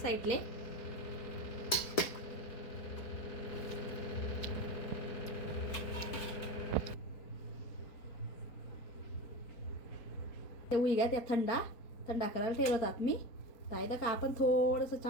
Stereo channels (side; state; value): right; late; 4.3 ms